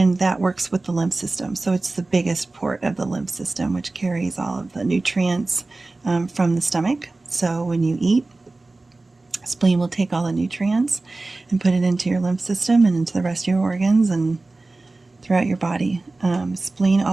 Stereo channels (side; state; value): left; quieter; 3.2 dB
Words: that works with the lymph system. So it's the biggest port of the lymph system, which carries all of the nutrients from the stomach. So when you eat, spleen will take all the nutrients and put it into your lymph system and into the rest of your organs and throughout your body. Spleen